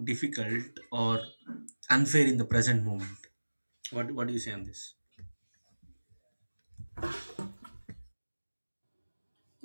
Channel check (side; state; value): both; inverted; correlation -1.00